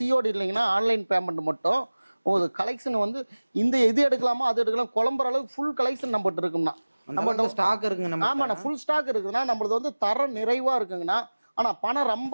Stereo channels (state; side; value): inverted; both; correlation -1.00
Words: இல்லைங்கன்னா ஆன்லைன் பேமெண்ட் மட்டும். உங்களுக்கு கலெக்ஷன் வந்து இந்த எது எடுக்கலாமோ அது எடுக்கலாம். குழம்புற அளவுக்கு ஃபுல் கலெக்ஷன் நம்மகிட்ட இருக்குங்கண்ணா. நம்மகிட்ட ஸ்டாக் இருக்குங்க. ஆமாண்ணா, ஃபுல் ஸ்டாக் இருக்குதுன்னா நம்மளது வந்து தரம் நிறைவா இருக்குங்கண்ணா. ஆனால் பணம்